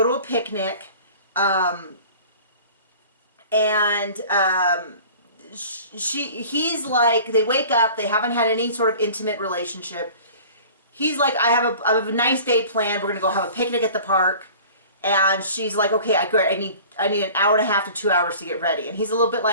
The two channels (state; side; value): inverted; both; correlation -0.44